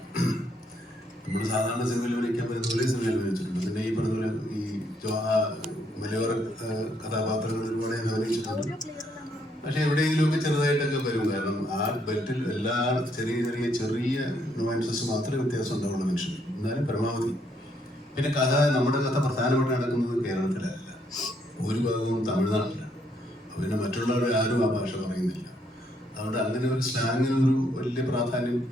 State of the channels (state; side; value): normal; both; correlation 0.72